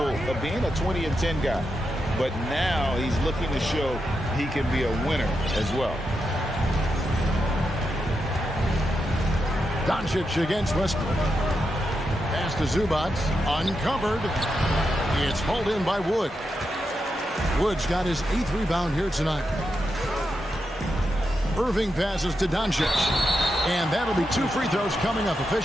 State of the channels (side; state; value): both; normal; correlation 0.86